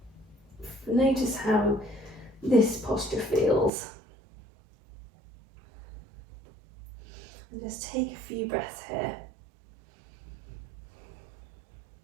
notice how this posture feels. And just take a few breaths here.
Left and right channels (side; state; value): left; drops out; at 3.7 s